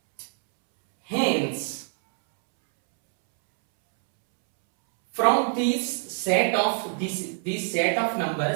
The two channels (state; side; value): silent; left; 62 dB below the other